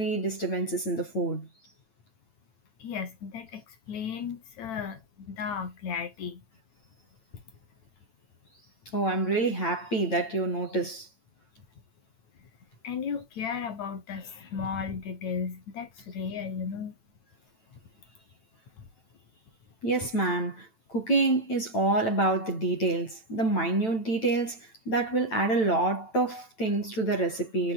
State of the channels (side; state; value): right; late; 9.0 ms